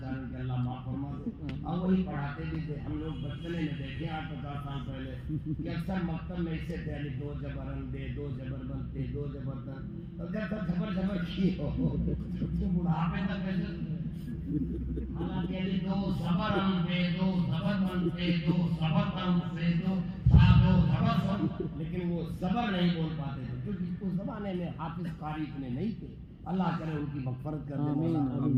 کہ اللہ معاف فرما دے، اور وہی پڑھاتے بھی تھے۔ ہم لوگ بچپنے میں دیکھے 8-50 سال پہلے کہ اکثر مکتب میں اسے پہلے 2 زبرن دے 2 زبربن دے 2 زبردن، اور جب تک جبر کی ہو تو بڑھاپے تک کیسے حالانکہ 2 زبرن دے 2 زبربن دے 2 زبردن دے 2 زبر، لیکن وہ زبر نہیں بول پاتے تھے کیونکہ اس زمانے میں حافظ قاری اتنے نہیں تھے۔ اللہ کرے ان کی مغفرت کر دے،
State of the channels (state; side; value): identical; both; correlation 1.00